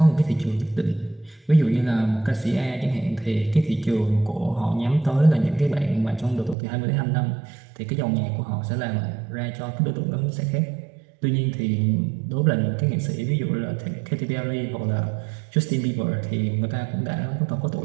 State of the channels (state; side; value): drops out; left; at 6.6 s